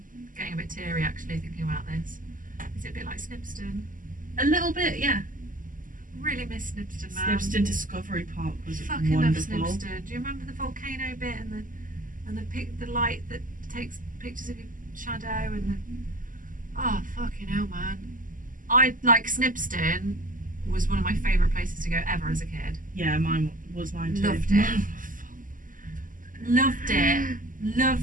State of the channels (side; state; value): left; late; 0.39 ms